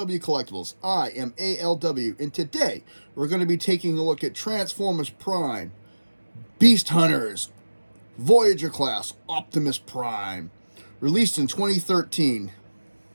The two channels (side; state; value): both; inverted; correlation -1.00